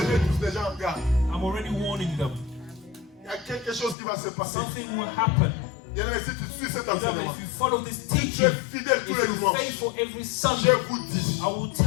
mets tous déjà en garde. I'm already warning them. Il y a quelque chose qui va se passer. Something will happen. Bien aimé, si tu suis cet Beloved, enseignement, if you follow this tu es teaching, fidèle tous if les you're dimanches, faithful every je Sunday, vous dis, I will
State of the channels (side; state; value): right; drops out; at 4.0 s